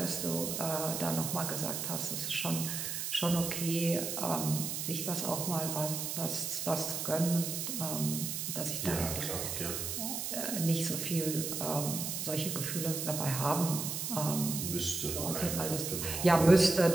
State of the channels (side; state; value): right; noise; hiss, 3 dB below the sound